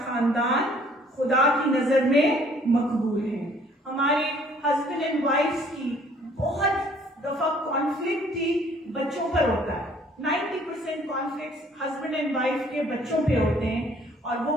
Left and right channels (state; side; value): normal; both; correlation 0.59